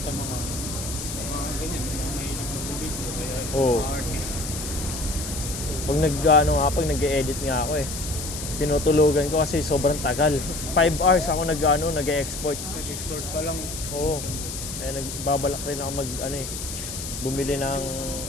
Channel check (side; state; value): left; noise; hiss, 7 dB below the sound